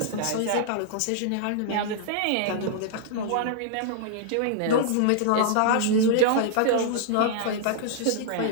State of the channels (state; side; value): different; both; correlation -0.01